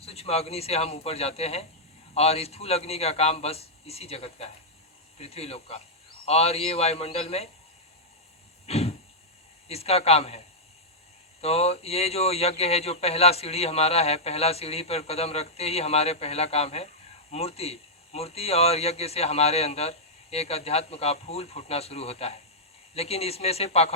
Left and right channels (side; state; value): both; normal; correlation -0.08